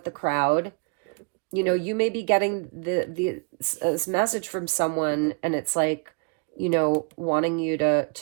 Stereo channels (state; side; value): quieter; left; 37.0 dB